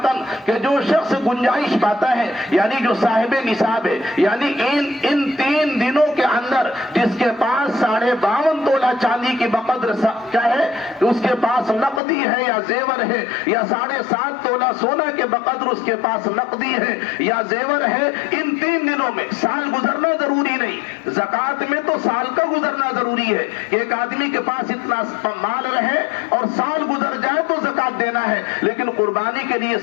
کہ جو شخص گنجائش پاتا ہے, یعنی جو صاحب نصاب ہے, یعنی ان 3 دنوں کے اندر جس کے پاس 52.5 تولہ چاندی کی بقدر کیا ہے, اس کے پاس نقدی ہے یا زیور ہے, یا 7.5 تولہ سونا کے بقدر اس کے پاس نقدی ہے یا زیور ہے, ان 3 دنوں میں سال گزرنا ضروری نہیں. زکات میں تو سال کا گزرنا ضروری ہے. ایک آدمی کے پاس اتنا مال رہے اور سال گزر جائے تو زکات دینا ہے, لیکن قربانی کے لیے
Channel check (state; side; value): drops out; right; at 12.0 s